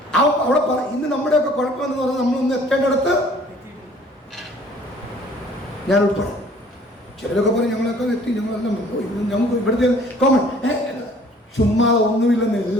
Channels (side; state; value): both; normal; correlation 0.54